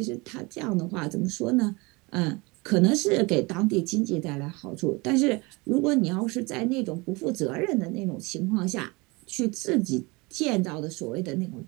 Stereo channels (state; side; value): quieter; left; 25.6 dB